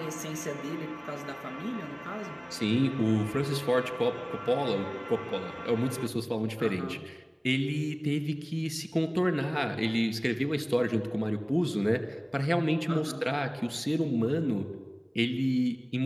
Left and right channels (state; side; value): identical; both; correlation 1.00